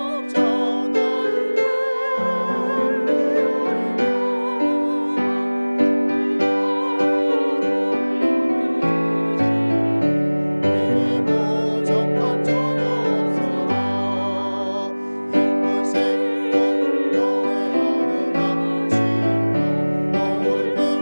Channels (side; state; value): both; inverted; correlation -1.00